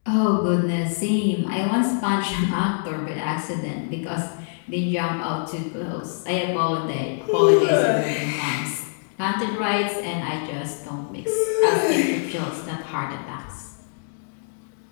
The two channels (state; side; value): silent; right; digital silence